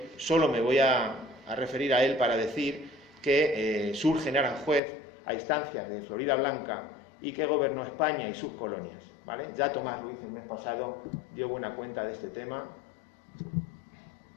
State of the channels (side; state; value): right; drops out; at 4.8 s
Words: solo me voy a referir a él para decir que surge en Aranjuez a instancias de Floridablanca y que gobernó España y sus colonias, ¿vale? Ya Tomás Ruiz el mes pasado dio buena cuenta de este tema.